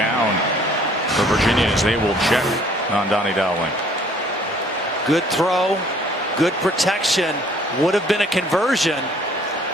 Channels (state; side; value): normal; both; correlation 0.58